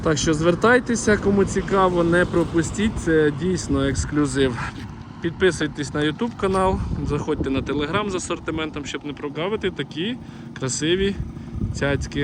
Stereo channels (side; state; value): both; identical; correlation 1.00